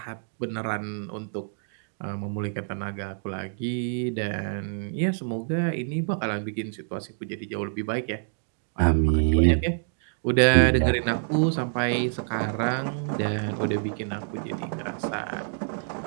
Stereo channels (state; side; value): silent; left; digital silence